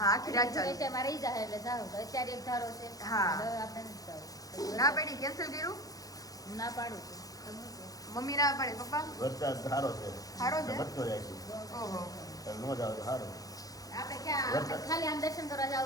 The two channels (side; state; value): right; late; 0.17 ms